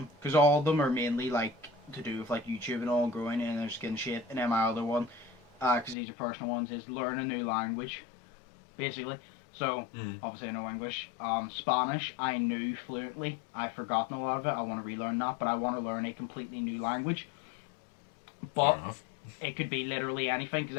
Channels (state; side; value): drops out; right; at 6.0 s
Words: because all of them are mainly like to do with like YouTube and all, growing and their skin shape. And then my other one, because these are personal ones, is learn a new language, basically. So obviously I know English. Spanish I knew fluently. I've forgotten a lot of it. I want to relearn that, but I want to learn a completely new language. But it could be literally anything because